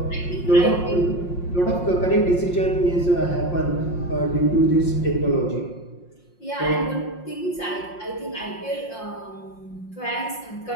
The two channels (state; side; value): late; right; 5.6 ms